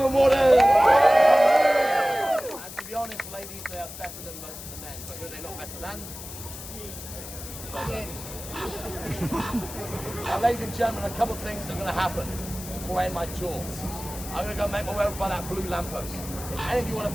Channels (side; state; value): left; noise; hiss, 12 dB below the sound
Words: Warders. And to be honest, ladies, they are better than most of the men. But who are they not better than? Now, ladies and gentlemen, a couple of things are going to happen before I end my tour. I'm going to go make my way over by that blue lamppost. If any of you want